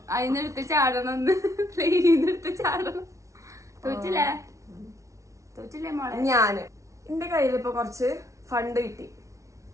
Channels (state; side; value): late; left; 0.15 ms